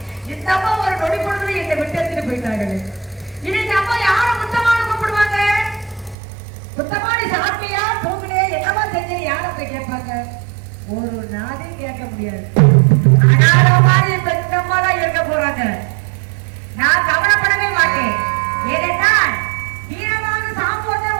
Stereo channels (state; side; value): drops out; left; at 6.2 s